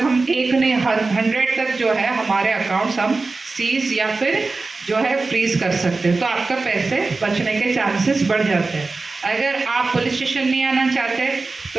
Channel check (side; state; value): left; quieter; 3.7 dB